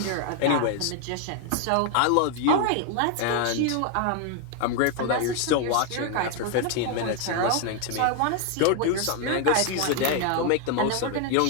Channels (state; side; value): different; both; correlation 0.01